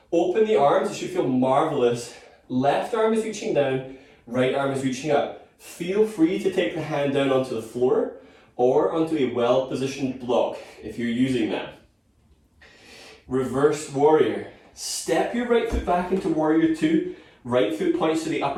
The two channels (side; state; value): both; identical; correlation 1.00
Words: open the arms, it should feel marvelous. Left arm is reaching down, right arm is reaching up. Feel free to take the hand down onto the floor or onto a well-positioned block if you're using that. Reverse warrior. Step your right foot back into warrior two. Right foot points to the